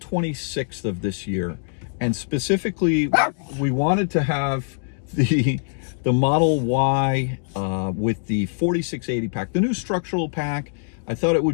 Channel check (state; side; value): silent; right; digital silence